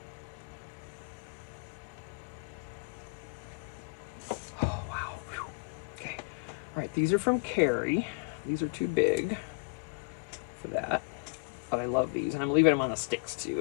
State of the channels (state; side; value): quieter; right; 34.7 dB